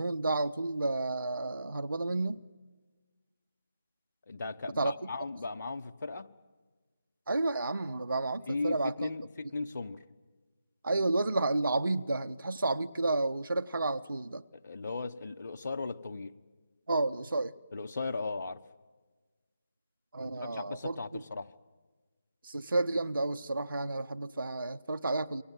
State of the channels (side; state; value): both; inverted; correlation -0.85